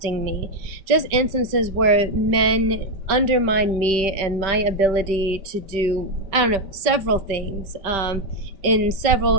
me. Just instances where men undermine me and my ability to do, I don't know, several things in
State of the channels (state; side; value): late; left; 5.2 ms